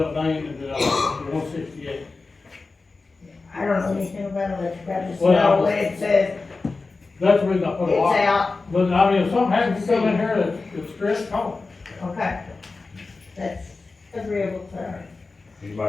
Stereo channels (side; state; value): right; quieter; 3.8 dB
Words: got a name in 168. I don't know anything about electric, I just Well, know when it says That's the reason I put a it's lock. out, But I mean, if something happens, you come in here that's stressed, call okay. That's agreeable to her.